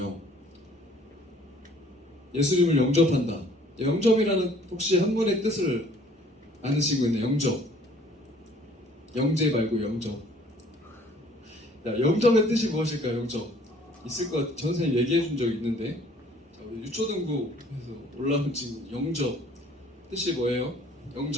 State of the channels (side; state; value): both; normal; correlation 0.56